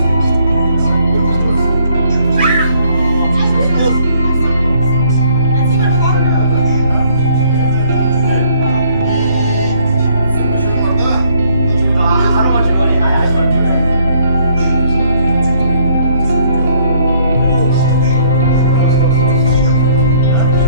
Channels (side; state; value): both; inverted; correlation -0.64